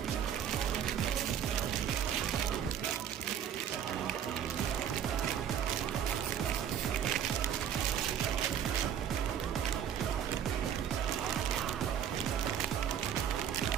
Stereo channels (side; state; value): left; quieter; 9.1 dB